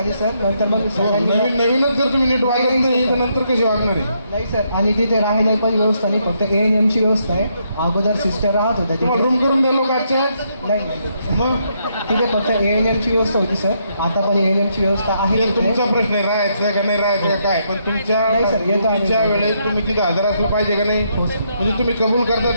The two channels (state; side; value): inverted; both; correlation -0.76